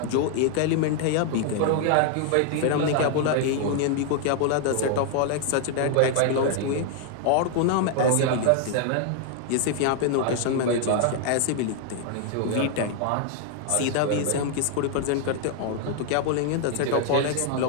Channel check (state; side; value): different; both; correlation 0.00